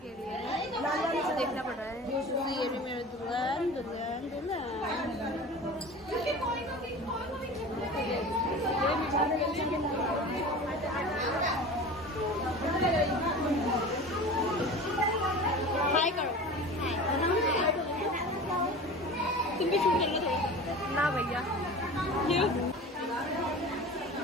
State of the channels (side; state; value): both; normal; correlation 0.35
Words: लिए, देखना पड़ रहा है। ये भी मेरे दुल्हन दुल्हन दुल्हन। हाय करो। तुम भी शूट करना थोड़ा ना भैया। क्यों?